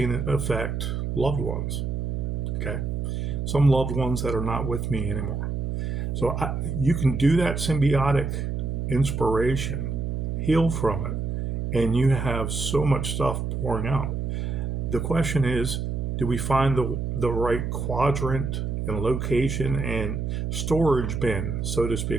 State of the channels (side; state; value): right; noise; hum, 2 dB below the sound